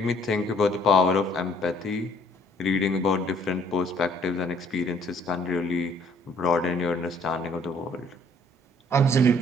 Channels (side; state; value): both; normal; correlation 0.61